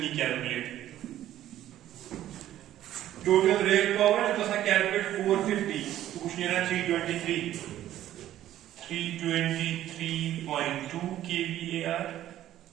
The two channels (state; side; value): quieter; left; 12.8 dB